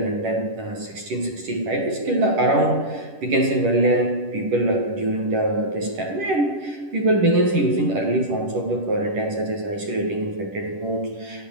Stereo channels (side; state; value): left; late; 10 ms